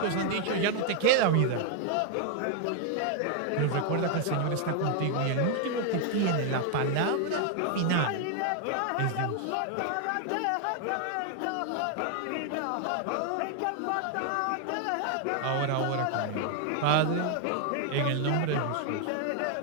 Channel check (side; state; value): both; different; correlation 0.00